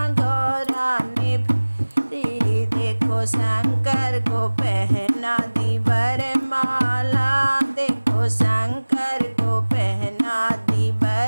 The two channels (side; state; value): both; inverted; correlation -1.00